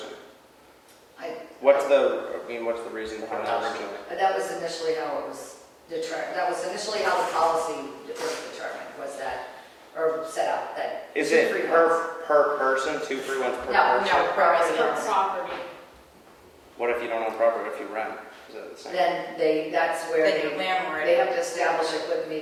What's the reason behind that originally? That was initially how it was determined, that was initially how the policy was determined, was that, or set up, that. Is 2 it free ones. per person, 2 free ones per No, person? no, per Per residence. property. What if you don't own property, if you rent? Is that the same? Then that's where Like a landlord. they have to establish it with me,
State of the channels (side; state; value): both; identical; correlation 1.00